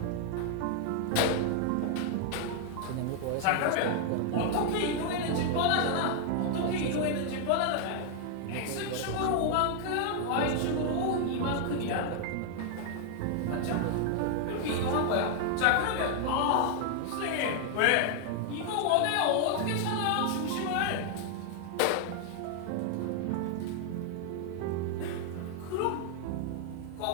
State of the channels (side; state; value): both; different; correlation 0.00